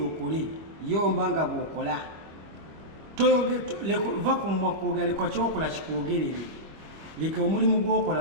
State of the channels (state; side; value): late; left; 25 ms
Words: Yomba nga bw'okola. Va ku mumwa kwogera, leka kyokola kikwogerere. Leka omulimu gw'okola